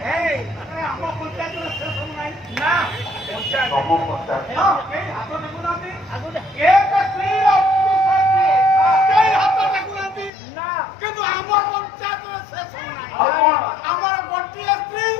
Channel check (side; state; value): right; drops out; at 10.3 s